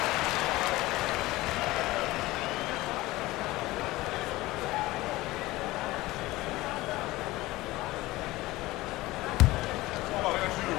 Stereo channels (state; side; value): quieter; right; 18.8 dB